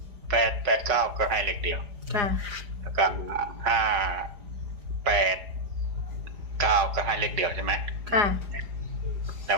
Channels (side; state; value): left; late; 4.9 ms